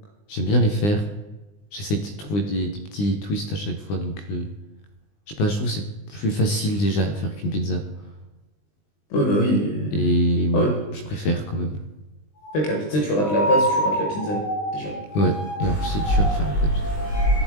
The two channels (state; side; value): late; right; 20 ms